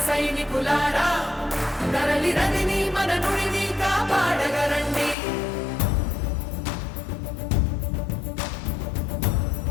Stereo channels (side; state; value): right; drops out; at 5.2 s